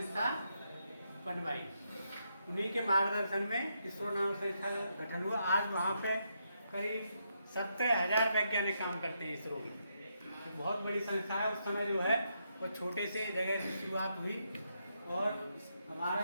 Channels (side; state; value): both; inverted; correlation -0.80